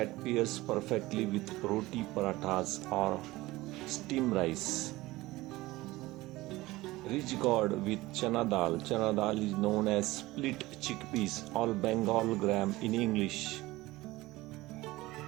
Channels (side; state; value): left; quieter; 19.1 dB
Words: pairs perfectly with roti parathas or steamed rice. Rich gourd with chana dal. Chana dal is known as split chickpeas or Bengal gram in English.